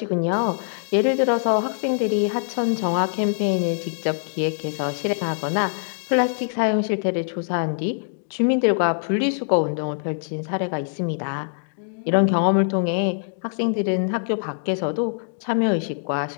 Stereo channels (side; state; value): right; silent; digital silence